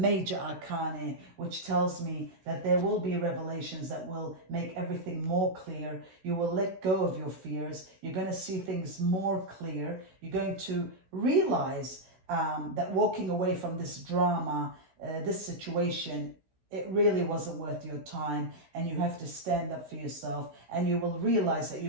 arcana, which tells me that there will be revelations that will make everything more clear. You will let go of your fears. You're going to see things more clear. You're going to realize that walking away from this drama, this situation, it really wasn't worth your time, and you have to stand up for yourself, and you will realize that you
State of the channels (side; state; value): left; late; 16 ms